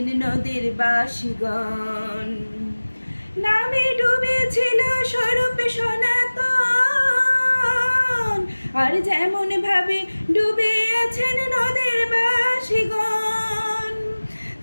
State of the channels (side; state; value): both; inverted; correlation -1.00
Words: নদের বাসীগণ। নামে ডুবেছিল স্বরূপ সনাতন, আর যেমন ভাবে ডুবে আছেন নদের বাসীগণ।